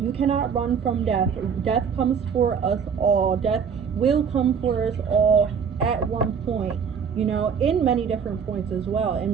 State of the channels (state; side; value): quieter; left; 6.7 dB